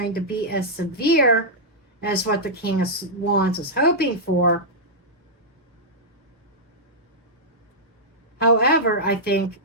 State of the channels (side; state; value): both; normal; correlation -0.10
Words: to be as severe as what the King of Wands is hoping for. However, I think